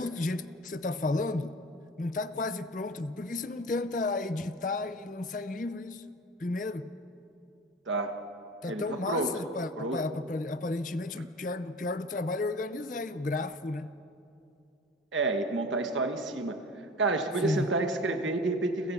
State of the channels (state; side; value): normal; both; correlation 0.39